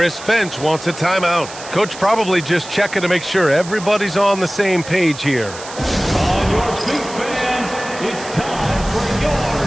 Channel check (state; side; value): noise; right; hiss, 14 dB below the sound